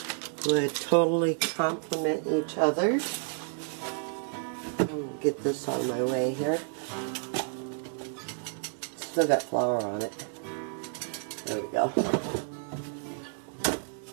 would totally complement each other. I'm going to get this out of my way here. Still got flour on it. There we go.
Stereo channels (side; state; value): left; silent; 58 dB below the other